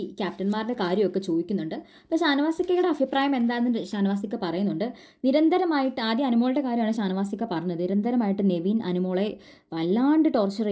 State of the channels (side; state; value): both; identical; correlation 1.00